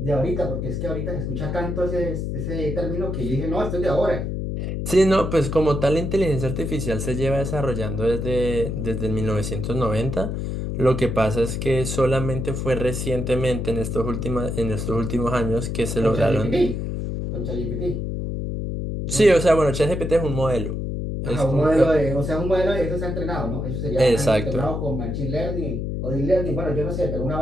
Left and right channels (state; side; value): noise; left; hum, 3 dB below the sound